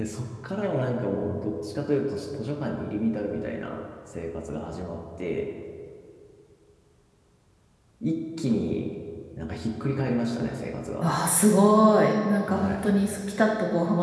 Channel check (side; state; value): both; identical; correlation 1.00